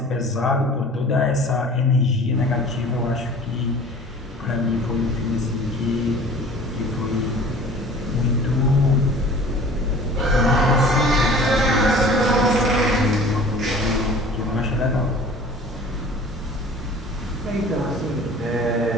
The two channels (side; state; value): both; normal; correlation 0.45